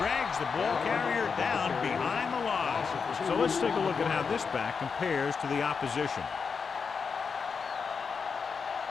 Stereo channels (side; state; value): right; quieter; 5.6 dB